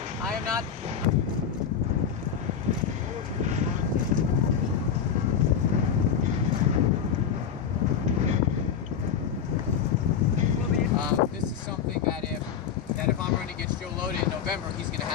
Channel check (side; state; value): right; quieter; 7.6 dB